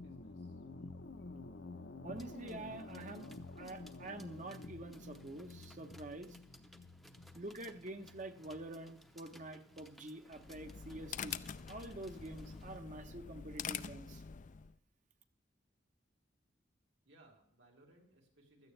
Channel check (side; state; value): both; normal; correlation 0.39